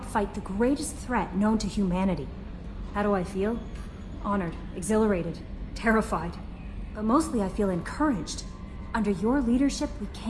fight the greatest threat known to humanity. How do I feel? Honored, exhilarated, terrified. But mostly I feel encouraged. Under your leadership, we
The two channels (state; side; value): identical; both; correlation 1.00